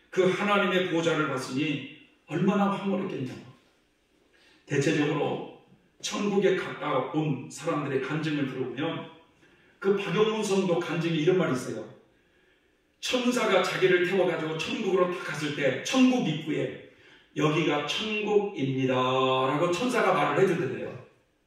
그 하나님의 보좌를 봤으니 얼마나 황홀했겠냐고. 대체적으로 천국에 가까운 사람들의 간증을 들어보면 그 박영문 성도 간증에 이런 말이 있어요. 천사가 자기를 태워가지고 천국으로 딱 갔을 때 천국 입구에 여기가 천국입니다 라고 천사가 말을 해주던데요.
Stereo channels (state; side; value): identical; both; correlation 1.00